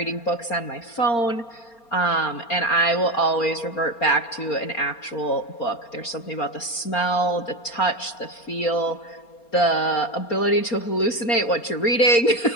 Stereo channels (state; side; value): late; right; 4.3 ms